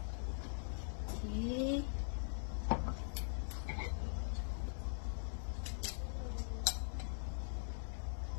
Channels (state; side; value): silent; right; digital silence